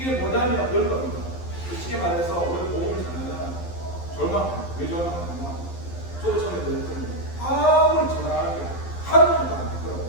뭐냐면 그런 겁니다. 쉽게 말해서 우리가 복음을 전하잖아요. 절망합니다. 왜 절망하냐면 저도 처음에 그랬더니 아무리 전하는 게 한 번도 안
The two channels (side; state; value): right; late; 12 ms